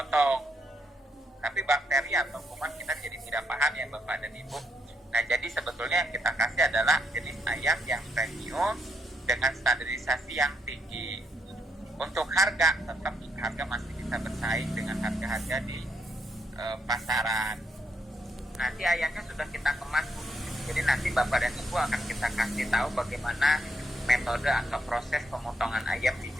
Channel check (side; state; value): both; normal; correlation 0.76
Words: Tapi bakteri atau kuman kita jadi tidak paham ya Bapak dan Ibu. Nah jadi sebetulnya yang kita kasih adalah jenis ayam yang premium dengan standarisasi yang tinggi. Untuk harga, tetap harga masih bisa bersaing dengan harga-harga di pasaran. Nanti ayamnya sudah kita kemas, Bu. Jadi nanti Bapak dan Ibu akan kita kasih tahu bagaimana metode atau proses pemotongan ayam di